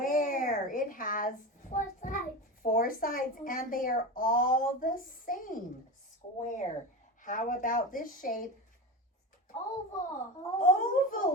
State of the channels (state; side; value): normal; both; correlation 0.24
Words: It has 4 sides. 4 sides, and they are all the same. Square. How about this shape? Oval.